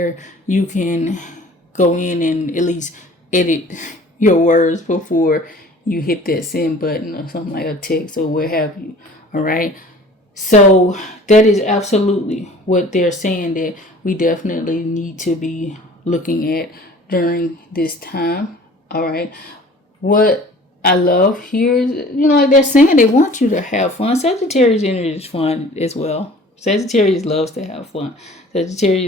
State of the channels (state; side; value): normal; both; correlation 0.47